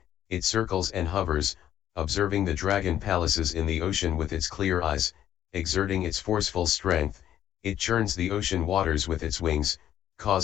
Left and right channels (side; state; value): right; quieter; 11.2 dB